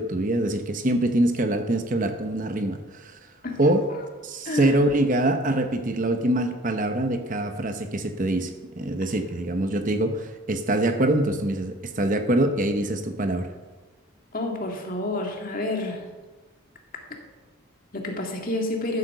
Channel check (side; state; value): both; normal; correlation 0.51